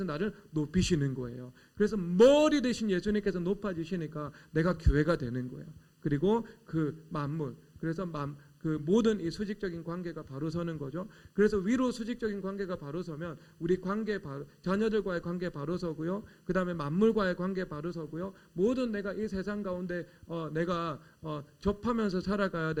나를 높이시는 거예요. 그래서 머리 대신 예수님께서 높아지시니까 내가 교회가 되는 거예요. 그리고 그 만물, 그래서 그 모든 이 수직적인 관계가 바로 서는 거죠. 그래서 위로 수직적인 관계가 바로 서면 우리 관계 자녀들과의 관계 바로 서고요. 그 다음에 만물과의 관계 바로 서고요. 모든 내가 이 세상 가운데 내가 접하면서 살아가야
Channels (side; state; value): both; identical; correlation 1.00